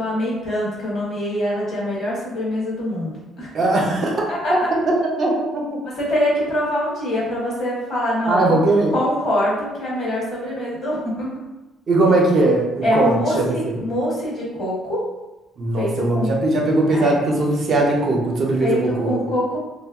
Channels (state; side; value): normal; both; correlation 0.67